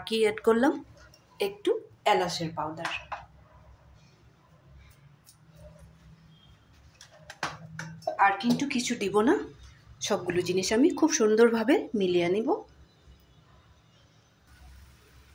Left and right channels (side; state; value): both; identical; correlation 1.00